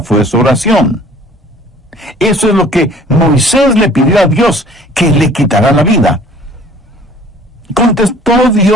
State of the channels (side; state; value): both; normal; correlation 0.51